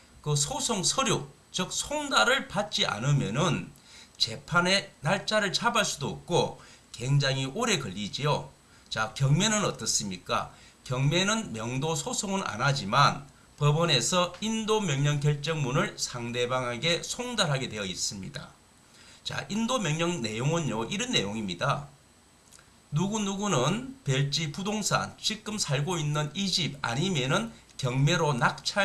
그 소송 서류, 즉 송달을 받지 않으면은 재판의 날짜를 잡을 수도 없고 굉장히 오래 걸리지요. 자, 경매는 어떻습니까? 경매는 명도 소송은 안 하지만 법원에서 인도 명령 결정문을 상대방에게 송달하게 되어 있습니다. 자, 인도 명령 내용은요, 이런 내용입니다. 누구누구는 별지 부동산, 지금 살고 있는 이 집 아니면은 경매로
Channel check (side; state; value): both; identical; correlation 1.00